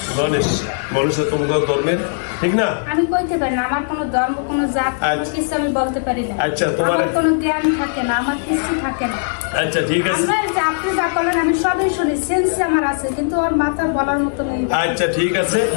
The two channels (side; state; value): right; silent; digital silence